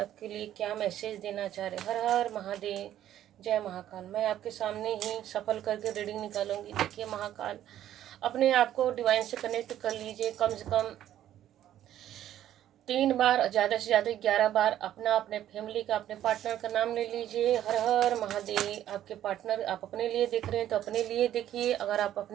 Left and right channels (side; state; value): left; quieter; 11.9 dB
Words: लिए क्या मैसेज देना चाह रहे? हर हर महादेव, जय महाकाल। मैं आपके सामने ही सफल करके रीडिंग निकालूंगी। देखिए महाकाल, अपने आप को डिवाइन से कनेक्ट कर लीजिए। कम से कम 3 बार, ज़्यादा से ज़्यादा 11 बार अपना, अपने फैमिली का, अपने पार्टनर का नाम ले लीजिए। हर हर महादेव। आपके पार्टनर, आप अपने लिए देख रहे हैं तो अपने लिए देखिए। अगर आप